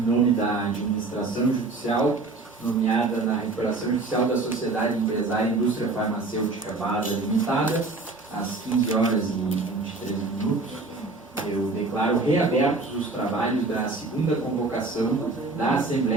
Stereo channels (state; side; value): quieter; left; 3.5 dB